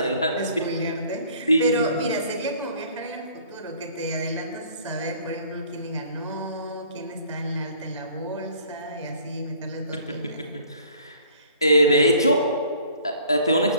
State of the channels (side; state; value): both; inverted; correlation -0.55